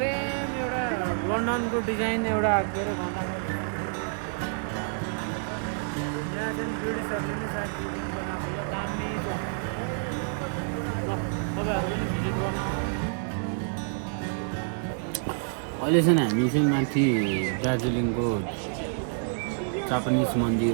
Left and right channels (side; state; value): left; silent; digital silence